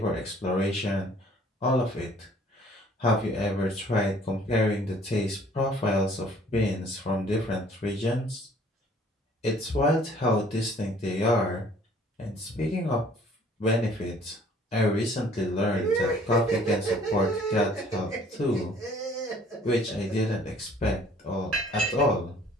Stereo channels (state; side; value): normal; both; correlation 0.56